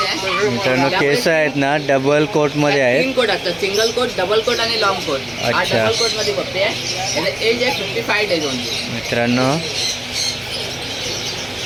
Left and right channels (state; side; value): noise; right; hum, 27 dB below the sound